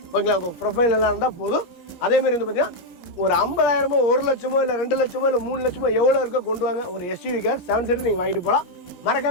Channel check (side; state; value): right; late; 17 ms